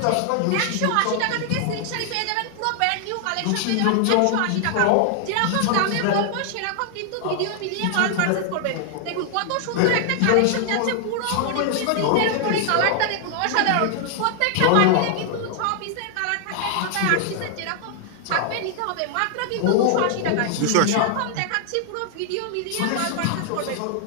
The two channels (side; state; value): both; different; correlation 0.00